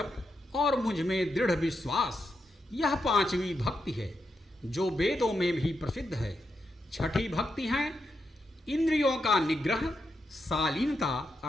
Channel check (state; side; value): normal; both; correlation 0.84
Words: और मुझ में दृढ़ विश्वास, यह पांचवी भक्ति है जो वेदों में भी प्रसिद्ध है। छठी भक्ति है इंद्रियों का निग्रह, शालीनता